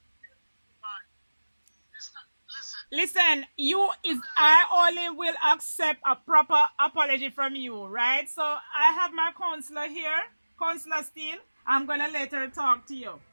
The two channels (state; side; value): inverted; both; correlation -1.00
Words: Listen, Listen, I only will accept a proper apology from you, right? So I have my counselor here, Counselor Steele. I'm gonna let her talk to you.